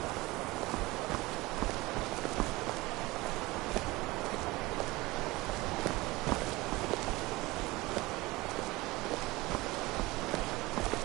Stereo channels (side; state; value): left; quieter; 21.1 dB